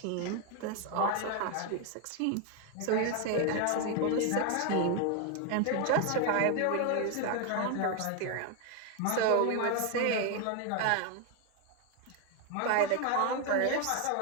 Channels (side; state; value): both; different; correlation 0.01